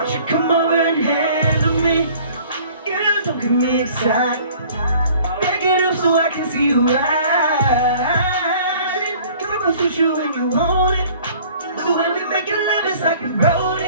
you come over and handle me? Girl, don't get me excited. Back it up so I can see you right. Girl, I'll shoot you when you want it. The way we make it love is like we wrote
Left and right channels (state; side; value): inverted; both; correlation -0.51